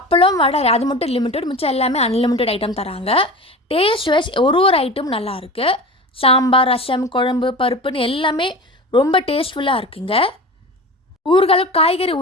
வடை அது மட்டும் லிமிட்டட், மிச்சம் எல்லாமே அன்லிமிட்டட் ஐட்டம் தராங்க. டேஸ்ட் வைஸ் ஒரு ஐட்டம் நல்லாயிருக்கு. சாம்பார், ரசம், குழம்பு, பருப்புன்னு எல்லாமே ரொம்ப டேஸ்ட்ஃபுல்லாக இருக்குங்க. ஊறுகாய், காய்கறி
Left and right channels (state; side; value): normal; both; correlation 0.32